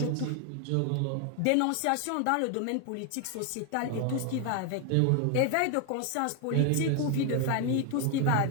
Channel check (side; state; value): both; different; correlation 0.01